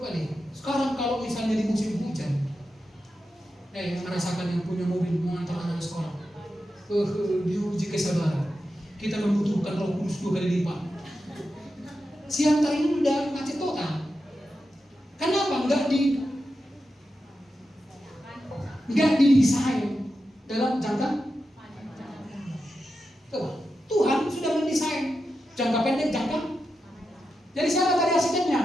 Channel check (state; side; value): normal; both; correlation 0.89